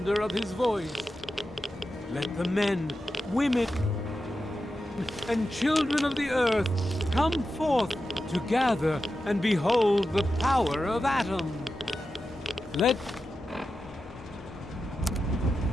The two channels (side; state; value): both; normal; correlation 0.91